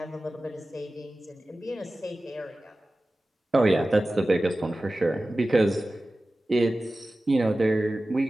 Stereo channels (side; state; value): both; normal; correlation 0.96